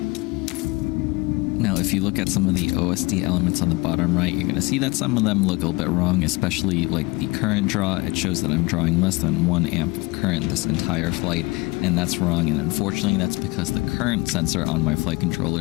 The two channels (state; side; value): quieter; right; 23.8 dB